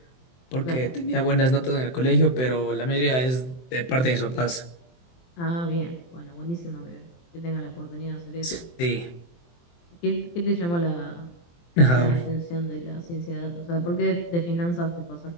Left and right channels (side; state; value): right; late; 23 ms